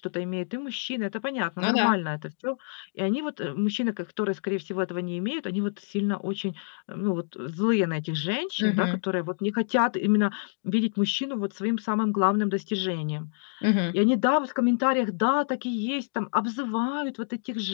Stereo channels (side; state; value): right; silent; digital silence